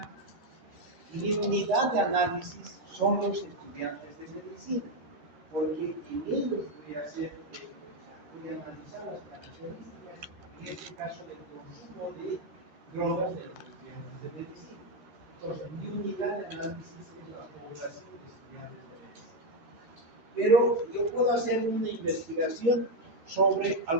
mi unidad de análisis son los estudiantes de medicina, porque en ellos voy a analizar las características, en este caso del consumo de drogas de los estudiantes de medicina. Entonces, mi unidad de análisis es la población de estudiantes de medicina. Pero yo puedo hacer una investigación sobre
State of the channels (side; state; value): left; late; 13 ms